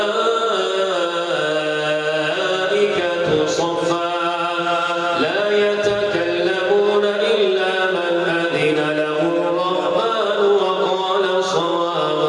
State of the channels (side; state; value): both; identical; correlation 1.00